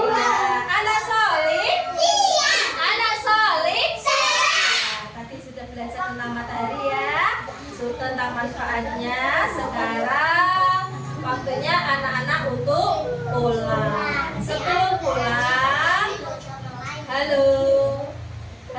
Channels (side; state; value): both; identical; correlation 1.00